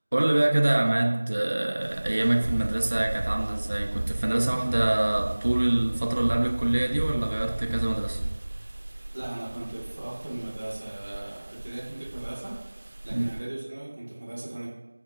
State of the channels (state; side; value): inverted; both; correlation -1.00